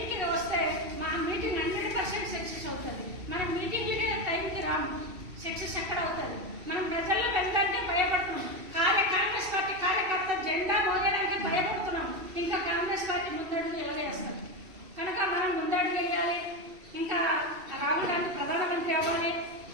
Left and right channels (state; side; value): late; left; 2.7 ms